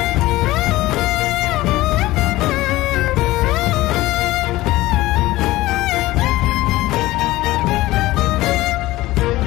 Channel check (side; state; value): right; quieter; 17.8 dB